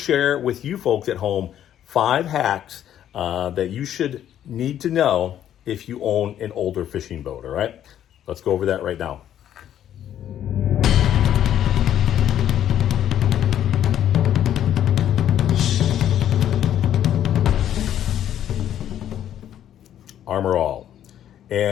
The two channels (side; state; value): right; quieter; 10.8 dB